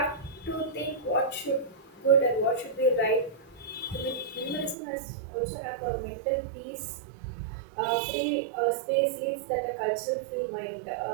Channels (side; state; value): left; drops out; at 4.8 s